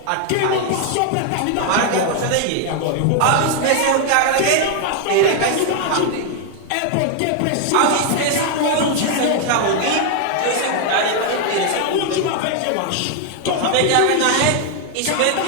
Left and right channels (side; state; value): both; different; correlation 0.00